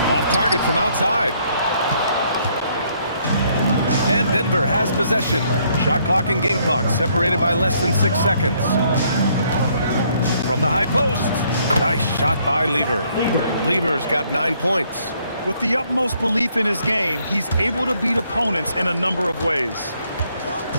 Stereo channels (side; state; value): both; inverted; correlation -0.68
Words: Off target from outside. And Denver has possession. Shot clock and game clock separated by less than 6 seconds. From the high post. Nice shot by Lever. Lever's got 9 points. With the utmost belief in his game, he's able to beat opponents in a number of ways.